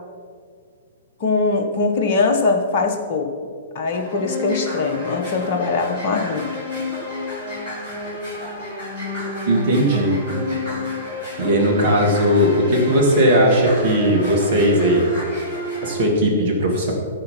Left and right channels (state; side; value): inverted; both; correlation -0.32